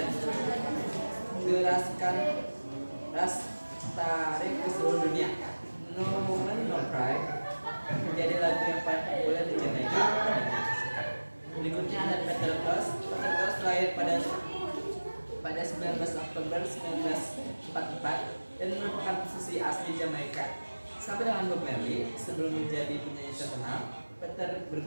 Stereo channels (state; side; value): inverted; both; correlation -1.00